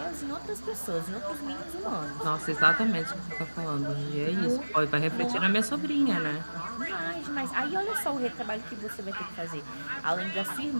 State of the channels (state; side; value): inverted; both; correlation -1.00